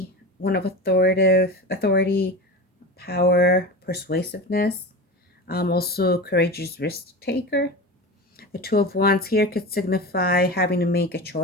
one of authority, power, persuasiveness, also courageous risk taker. The Two of Wands here could signify having to make a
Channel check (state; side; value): normal; both; correlation 0.28